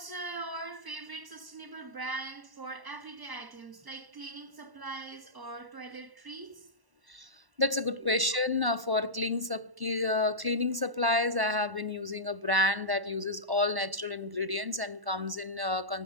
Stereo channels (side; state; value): left; late; 1.0 ms